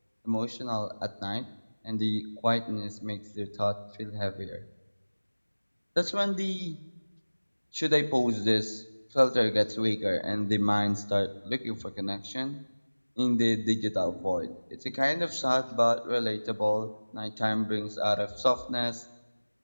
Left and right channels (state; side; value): inverted; both; correlation -1.00